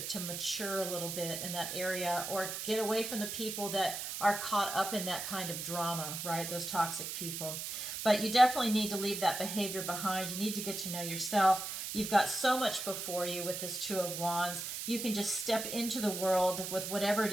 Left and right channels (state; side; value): noise; right; hiss, 5 dB below the sound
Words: mature a little bit in that area, or get away from the people that are caught up in that kind of drama, right? Those toxic people. But you definitely need to leave that behavior behind. You need to get to know yourself. You've got so much before you with this Two of Wands. You can just step into the world with whatever it